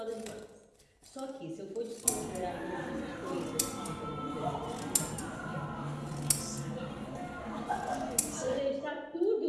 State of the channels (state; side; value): identical; both; correlation 1.00